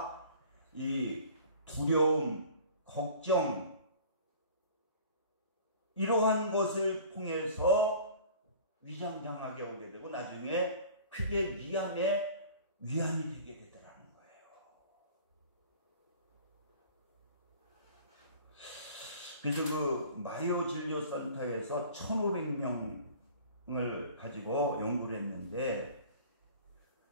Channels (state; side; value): inverted; both; correlation -0.45